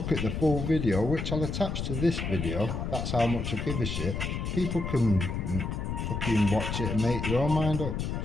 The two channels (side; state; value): left; noise; rumble, 3 dB below the sound